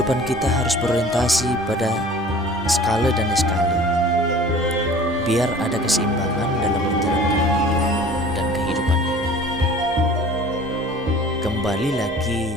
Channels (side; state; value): both; normal; correlation 0.45